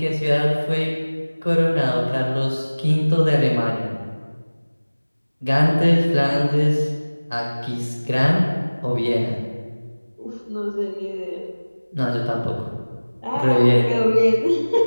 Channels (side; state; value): both; inverted; correlation -1.00